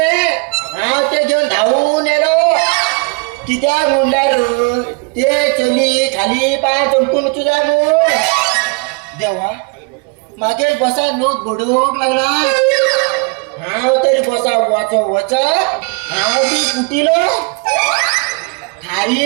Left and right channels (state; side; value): quieter; left; 32.8 dB